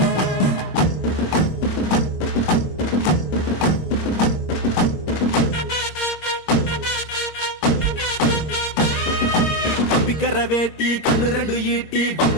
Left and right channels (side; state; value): right; late; 26 ms